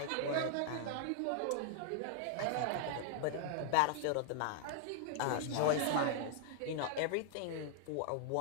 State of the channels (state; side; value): different; both; correlation 0.00